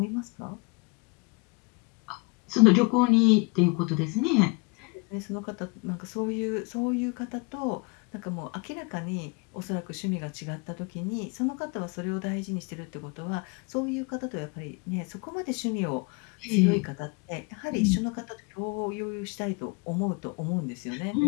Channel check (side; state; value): right; quieter; 30.0 dB